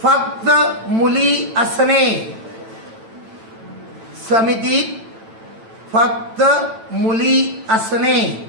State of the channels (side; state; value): left; late; 9.0 ms